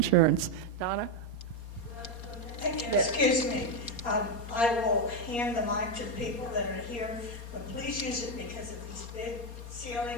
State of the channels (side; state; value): right; late; 4.3 ms